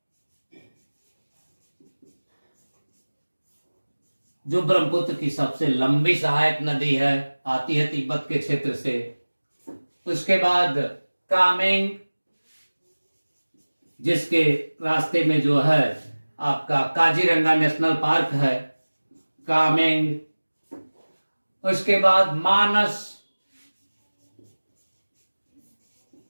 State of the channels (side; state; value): both; inverted; correlation -1.00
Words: जो ब्रह्मपुत्र की सबसे लंबी सहायक नदी है, आती है तिब्बत के क्षेत्र से। उसके बाद कामेंग, जिसके रास्ते में जो है आपका काजीरंगा नेशनल पार्क है, कामेंग। उसके बाद मानस,